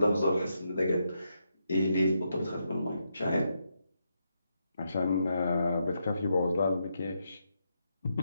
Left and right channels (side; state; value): both; inverted; correlation -0.82